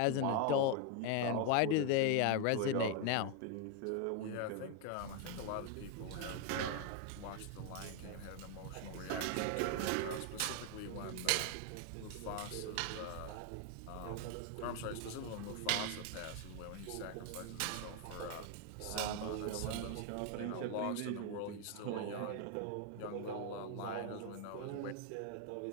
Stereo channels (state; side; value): different; both; correlation 0.01